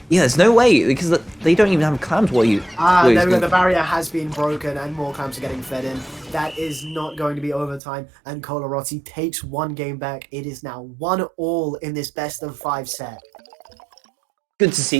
Yeah, there's no way, because they don't even have clams while you... There we go, the barrier has been broken and more clams are getting fed in. That is not going to be overtime, and Couleurs takes 1 game back. It is now 1-1 in this best of 5 set. Good to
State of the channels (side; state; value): left; drops out; at 7.8 s